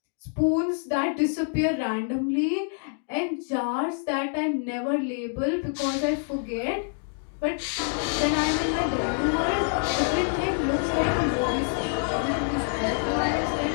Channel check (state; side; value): silent; right; 58 dB below the other